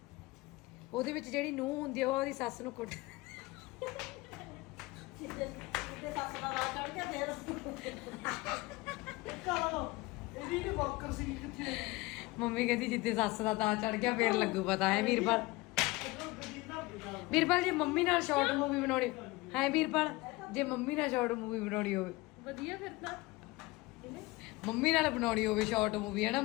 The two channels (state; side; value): quieter; right; 21.7 dB